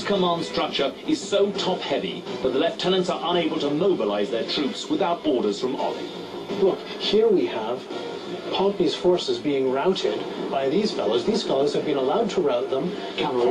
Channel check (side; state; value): both; identical; correlation 1.00